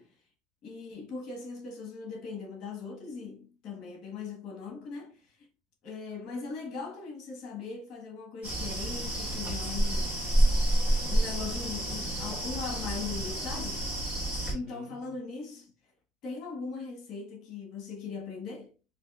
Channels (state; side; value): normal; both; correlation 0.75